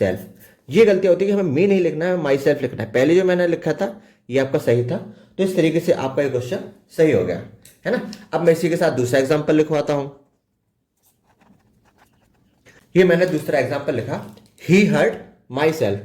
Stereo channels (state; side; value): identical; both; correlation 1.00